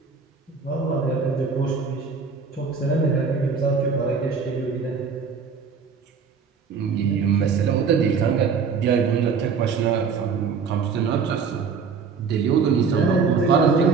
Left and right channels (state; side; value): quieter; left; 5.6 dB